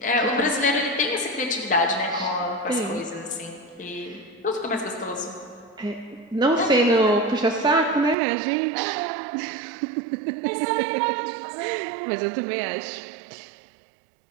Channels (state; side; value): drops out; left; at 8.2 s